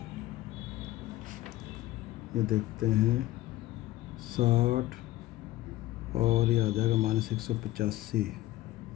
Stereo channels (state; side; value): quieter; right; 16.3 dB